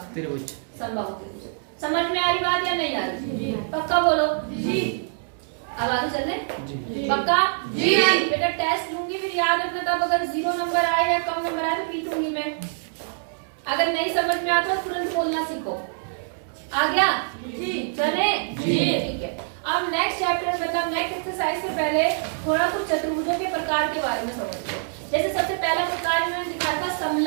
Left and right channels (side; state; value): left; silent; digital silence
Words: त्रिभुज। समबाहु त्रिभुज। समझ में आ रही बात या नहीं आ रही? पक्का बोलो जी। अब आगे चलने? पक्का जी। बेटा टेस्ट लूंगी, फिर याद रखना, तब अगर 0 नंबर आए या कम नंबर आए तो पीटूंगी मैं। अगर नहीं समझ में आता तो तुरंत बोलना सीखो। आ गया जी? चले जी, ठीक है। अब नेक्स्ट चैप्टर मतलब नेक्स्ट एक्सरसाइज से पहले थोड़ा कुछ चतुर्भुजों के प्रकार के बारे में समझते हैं। जैसे सबसे पहला प्रकार इन्होंने दिखाया था